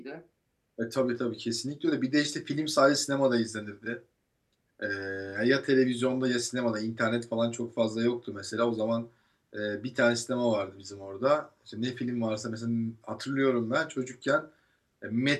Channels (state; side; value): identical; both; correlation 1.00